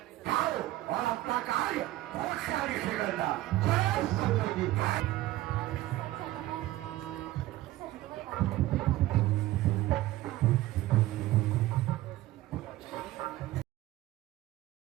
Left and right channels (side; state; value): left; quieter; 16.2 dB